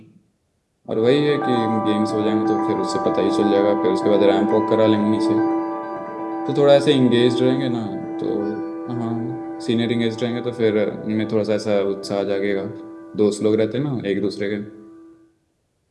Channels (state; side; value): identical; both; correlation 1.00